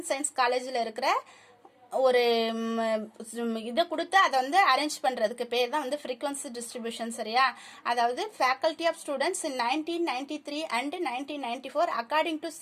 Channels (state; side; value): identical; both; correlation 1.00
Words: சயின்ஸ் காலேஜில் இருக்கிற ஒரு இதை கொடுத்து அதை வந்து அரேஞ்ச் பண்றதுக்கு பேர் தான் வந்து frequency distribution. சரியா? அதாவது faculty of students in 1993 and 1994 according to